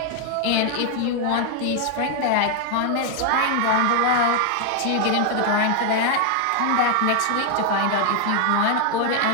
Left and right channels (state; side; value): different; both; correlation 0.00